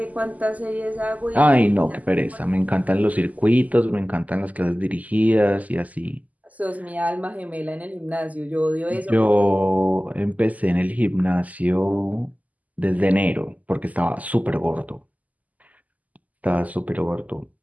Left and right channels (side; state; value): left; late; 0.076 ms